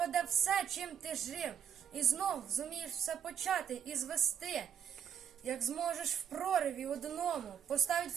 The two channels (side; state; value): left; quieter; 8.3 dB